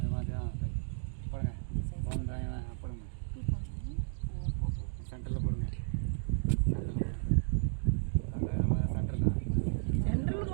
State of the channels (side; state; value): left; silent; digital silence